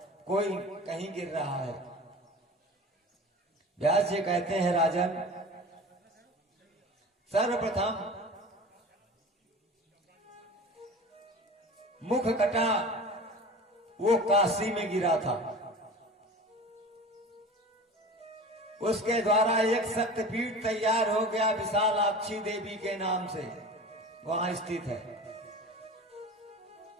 कोई कहीं गिर रहा है। व्यास जी कहते हैं, राजन सर्वप्रथम मुख कटा वो काशी में गिरा था, उसके द्वारा एक शक्तिपीठ तैयार हो गया विशालाक्षी देवी के नाम से, वहां स्थित है।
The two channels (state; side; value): normal; both; correlation 0.37